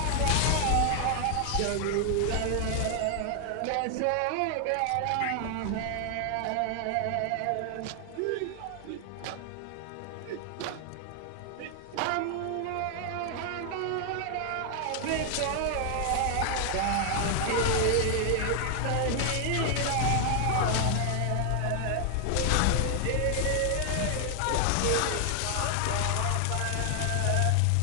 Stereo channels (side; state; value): both; different; correlation 0.00